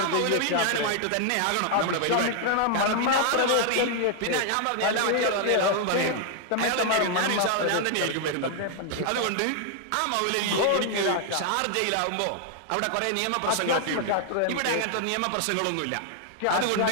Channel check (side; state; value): both; different; correlation 0.00